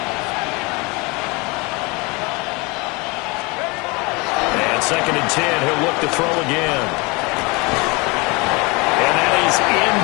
Second and 10, he'll look to throw again. And that is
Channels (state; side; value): quieter; right; 26.8 dB